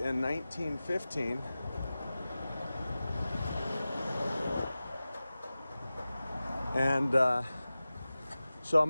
1915. And so I'm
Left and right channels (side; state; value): both; inverted; correlation -0.96